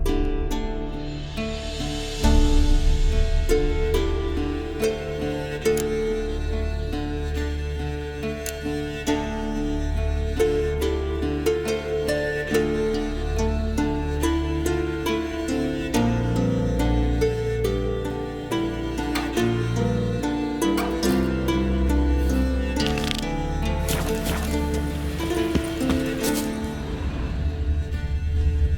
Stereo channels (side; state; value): both; identical; correlation 1.00